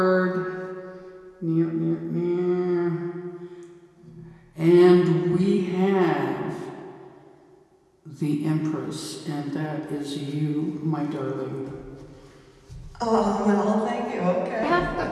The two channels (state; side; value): identical; both; correlation 1.00